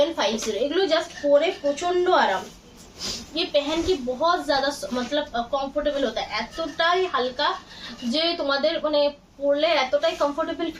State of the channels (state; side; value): identical; both; correlation 1.00